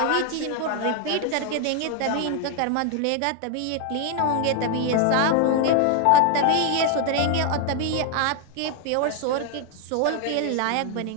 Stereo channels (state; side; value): different; both; correlation 0.00